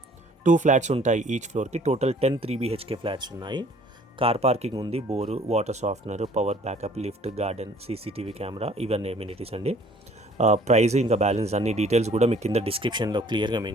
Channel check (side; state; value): both; normal; correlation 0.55